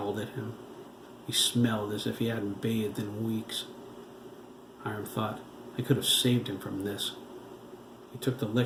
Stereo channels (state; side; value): identical; both; correlation 1.00